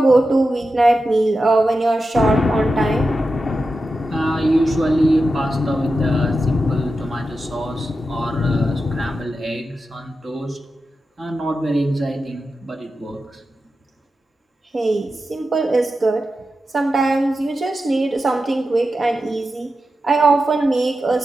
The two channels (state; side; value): normal; both; correlation 0.91